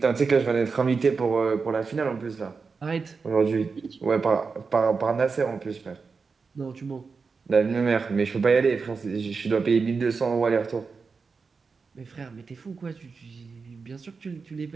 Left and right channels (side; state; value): left; quieter; 4.9 dB